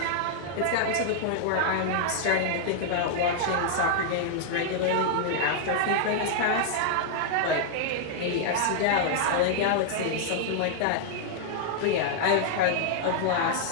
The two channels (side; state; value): both; different; correlation -0.01